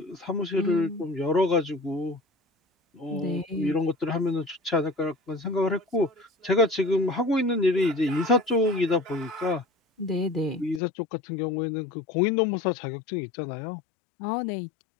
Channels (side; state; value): right; drops out; at 10.8 s